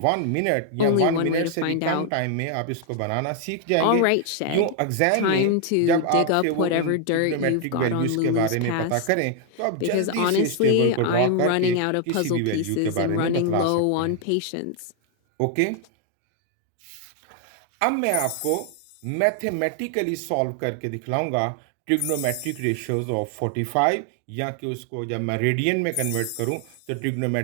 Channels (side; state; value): both; different; correlation 0.00